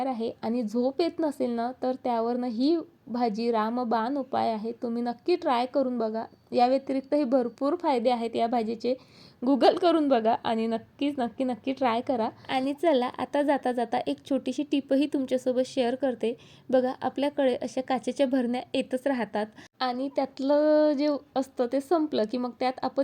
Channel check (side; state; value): both; identical; correlation 1.00